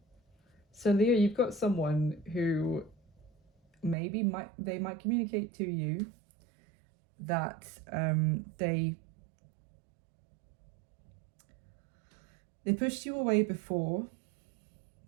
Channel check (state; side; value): drops out; left; at 4.0 s